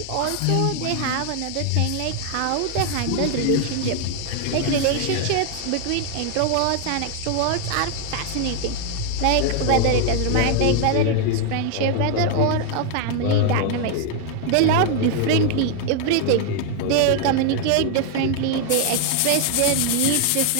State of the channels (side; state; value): both; different; correlation 0.00